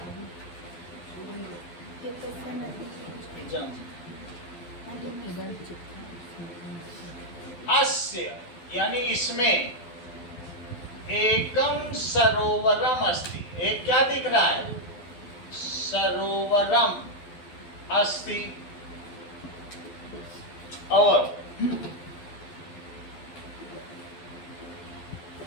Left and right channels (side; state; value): right; late; 12 ms